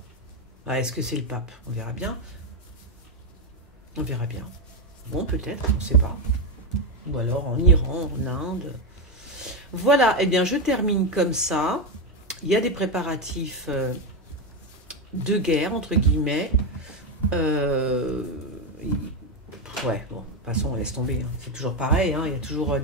Ah, est-ce que c'est le pape? On verra bien. On verra bien. Bon, peut-être, on ne sait pas. Ou alors en Iran, en Inde. Voilà, eh bien je termine comme ça. il y a des préparatifs de guerre, entre guillemets. Ouais, bon, de toute façon, on laisse tomber. Hein. C'est toujours pareil, hein. Il y a toujours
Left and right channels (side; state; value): both; normal; correlation 0.09